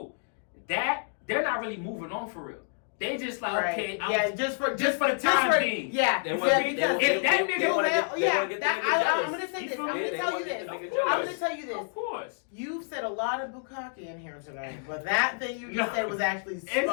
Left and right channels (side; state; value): right; silent; digital silence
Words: That they're not really moving on for real. They just like, okay, just for the time being. Yeah, They want to because if that nigga, I'm gonna say this. I'm gonna tell you this. I'm gonna tell you this. Of course. You said a lot of bukkake in here tonight, but that thing you just said was actually